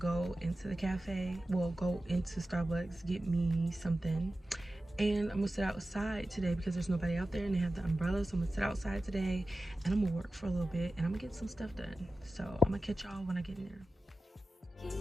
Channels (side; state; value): both; normal; correlation 0.94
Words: into the cafe, well, go into Starbucks, get me something, and I'm gonna sit outside today because there's nobody out there and they have the umbrella. So I'm gonna sit outside today and I'm gonna work for a little bit and I'm gonna get some stuff done. So I'm gonna catch y'all when I get in there.